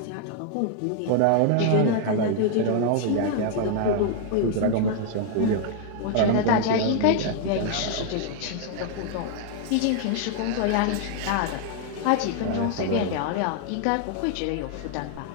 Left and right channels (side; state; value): both; different; correlation 0.00